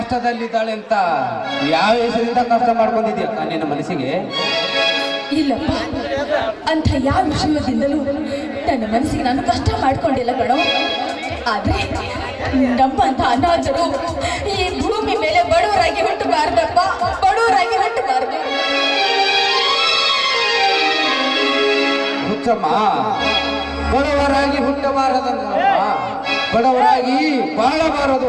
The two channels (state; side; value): identical; both; correlation 1.00